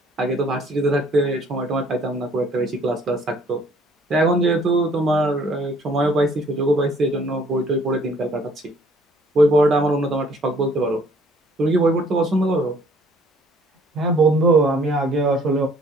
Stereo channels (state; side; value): normal; both; correlation 0.59